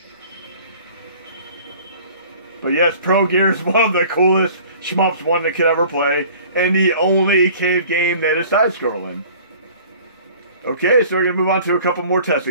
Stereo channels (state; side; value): inverted; both; correlation -0.48